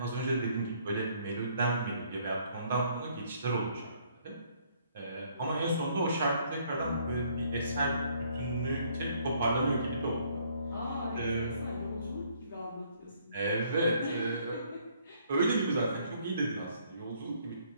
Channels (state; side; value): inverted; both; correlation -0.65